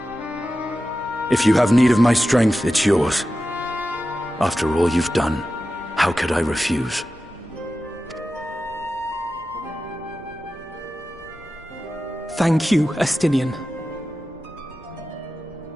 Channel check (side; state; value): both; normal; correlation 0.93